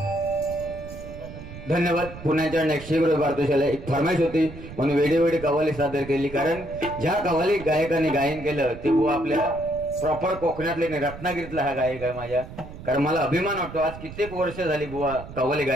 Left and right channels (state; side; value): noise; right; rumble, 13 dB below the sound